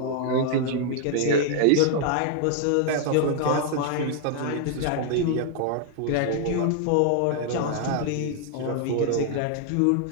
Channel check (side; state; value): both; different; correlation 0.00